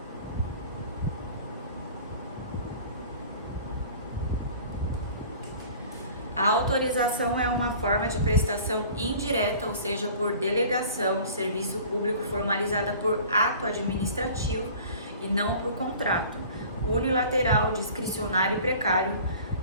A autorização é uma forma de prestação indireta, ou seja, por delegação de serviço público formalizada por ato administrativo e não por contrato. Unilateral, discricionário e precário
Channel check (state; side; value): inverted; both; correlation -0.45